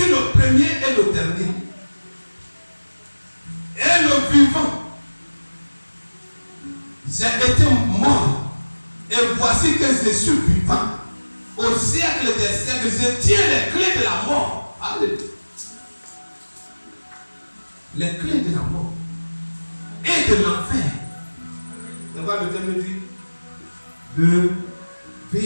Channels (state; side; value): inverted; both; correlation -1.00